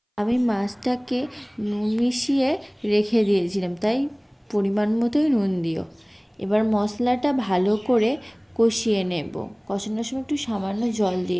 আমি মাছটাকে নুন মিশিয়ে রেখে দিয়েছিলাম, তাই পরিমাণ মতোই নুন দিও। এবার মশলাটা ভালো করে কষিয়ে নেব। কষানোর সময় একটু সামান্য জল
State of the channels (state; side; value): identical; both; correlation 1.00